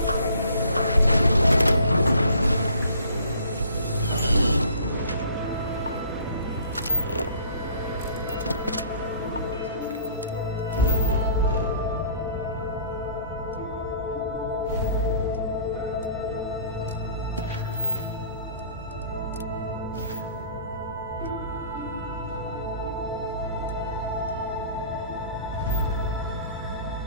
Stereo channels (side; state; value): both; inverted; correlation -0.51